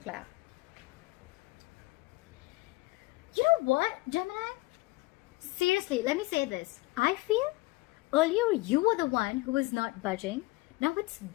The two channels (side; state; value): right; quieter; 21.8 dB